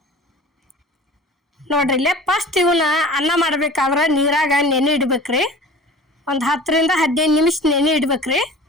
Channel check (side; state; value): both; normal; correlation 0.40